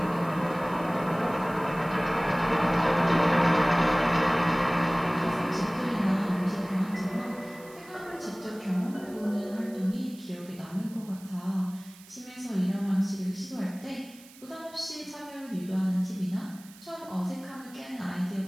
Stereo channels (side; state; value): right; noise; hiss, 22 dB below the sound